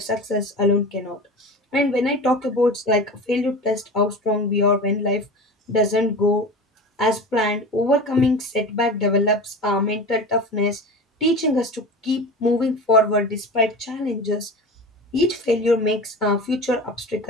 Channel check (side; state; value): both; normal; correlation 0.31